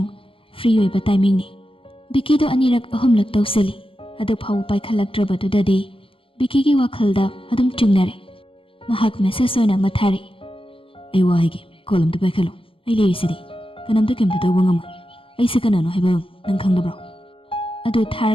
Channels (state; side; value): late; right; 0.26 ms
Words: ꯐ꯭ꯔꯤ ꯑꯣꯏꯕ ꯇꯥꯏꯃꯤꯡꯅꯤ꯫ ꯕꯤꯀꯤꯗꯨ ꯑꯅꯤꯔꯛ ꯑꯍꯨꯝꯂꯛ ꯇꯧꯁꯤꯜꯂꯤ, ꯑꯗꯨ ꯐꯥꯎꯕ ꯄꯥꯏꯈꯠꯂꯛꯇ꯭ꯔꯕꯗꯨꯗꯗꯤ ꯕꯤꯀꯤꯒꯤ ꯋꯥꯈꯜꯗ ꯑꯗꯨꯝ ꯆꯤꯡꯅꯔꯦ꯫ ꯃꯍꯥꯛ ꯃꯦꯁꯦꯖ ꯑꯣꯏꯅ ꯑꯃ ꯊꯥꯔꯛꯏ, ꯑꯩ ꯋꯥ ꯍꯥꯏꯒꯦ, ꯀꯣꯜ ꯑꯝꯇ ꯄꯥꯏꯈꯠꯂꯣ, ꯑꯩ ꯂꯩꯔꯤꯁꯤꯗꯤ, ꯀꯅꯥꯝꯇ ꯀꯩꯝꯇ ꯇꯧꯕ ꯉꯝꯃꯣꯏ, ꯑꯩꯁꯦ ꯀꯅꯥꯅꯣ ꯍꯥꯏꯕ ꯅꯪ ꯈꯪꯗꯕ꯭ꯔꯣ? ꯑꯗꯨ